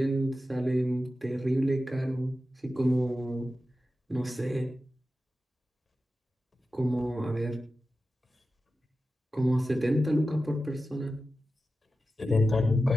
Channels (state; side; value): normal; both; correlation 0.93